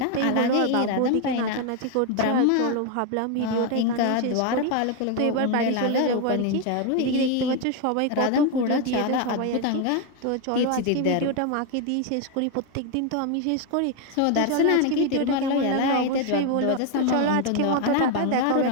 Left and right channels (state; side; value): different; both; correlation 0.01